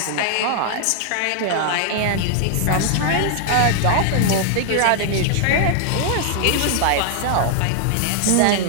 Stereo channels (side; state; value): both; different; correlation 0.00